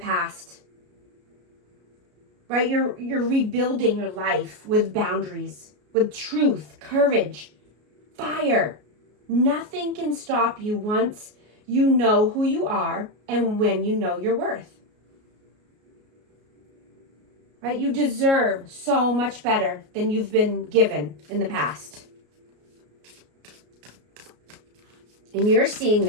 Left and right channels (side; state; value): left; late; 33 ms